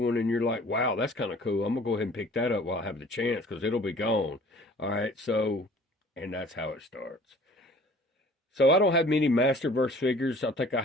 and you're like, wow, that's kind of cool. I'm going to go ahead and pick that up while I have the chance because it'll be gone. All right, so, and that's how it starts. So I don't have many Masterverse figures. I think I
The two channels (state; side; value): normal; both; correlation 0.50